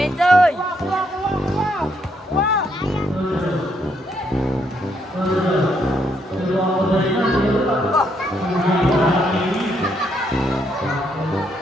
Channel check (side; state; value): both; normal; correlation 0.74